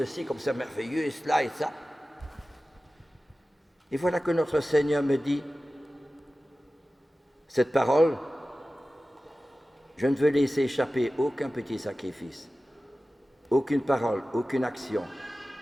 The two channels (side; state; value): both; normal; correlation 0.96